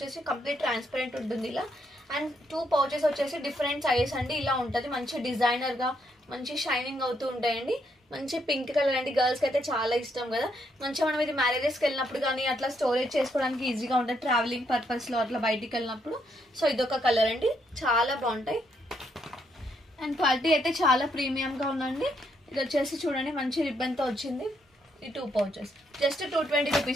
కంప్లీట్ ట్రాన్స్పరెంట్ ఉంటుంది ఇలా. అండ్ 2 పౌచెస్ వచ్చేసి డిఫరెంట్ సైజెస్ అండి. ఇలా ఉంటుంది, మంచి డిజైనర్ గా మంచి షైనింగ్ అవుతూ ఉంటాయండి. మంచి పింక్ కలర్ అండి, గర్ల్స్కి అయితే చాలా ఇష్టం కదా. మంచిగా మనం ఇది మ్యారేజెస్కి వెళ్ళినప్పుడు కానీ అట్లా స్టోరేజ్ చేసుకోవడానికి ఈజీగా ఉంటుంది, ట్రావెలింగ్ పర్పస్లో అట్లా బయటికి వెళ్ళినప్పుడు. సో ఇదొక కలర్ అండి, చాలా బాగుంటాయి. అండ్ క్వాలిటీ అయితే చాలా ప్రీమియంగా ఉందండి. ఇది వచ్చేసి చూడండి మంచి రిబ్బన్తో వచ్చింది. ఈ 2 పౌచెస్ జస్ట్ 220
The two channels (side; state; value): both; normal; correlation 0.75